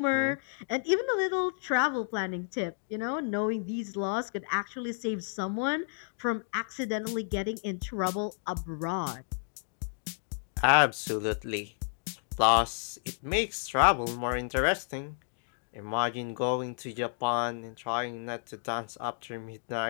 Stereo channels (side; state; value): right; silent; digital silence